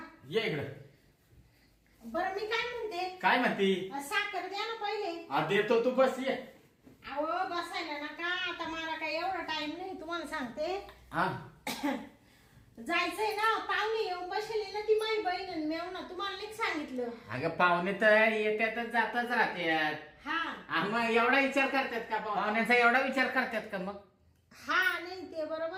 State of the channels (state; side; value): identical; both; correlation 1.00